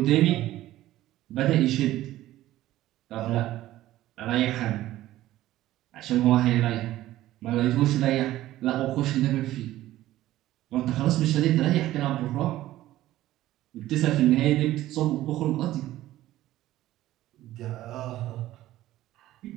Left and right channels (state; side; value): quieter; left; 14.9 dB